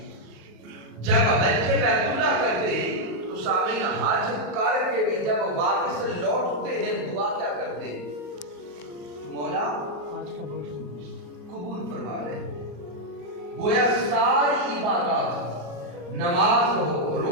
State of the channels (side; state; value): left; late; 34 ms